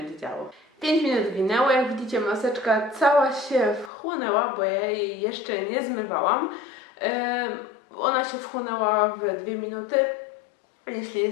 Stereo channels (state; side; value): drops out; right; at 3.9 s